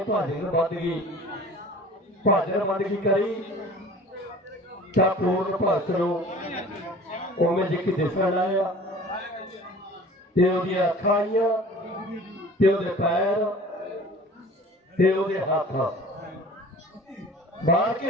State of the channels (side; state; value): both; normal; correlation 0.44